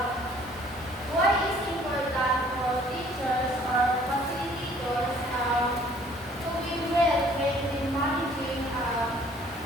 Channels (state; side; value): normal; both; correlation 0.57